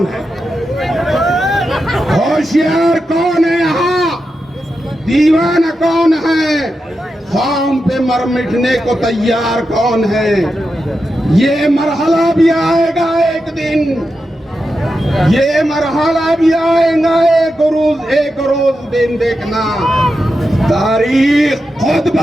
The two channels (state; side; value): normal; both; correlation 0.88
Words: है? होशियार कौन है यहाँ, दीवाना कौन है? ख़ौम पे मर मिटने को तैयार कौन है? ये मरहला भी आएगा एक दिन, ये मरहला भी आएगा एक रोज दिन देखना, तारीख खुद